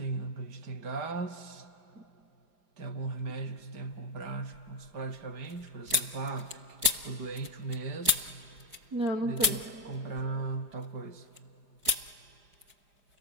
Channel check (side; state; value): left; late; 5.0 ms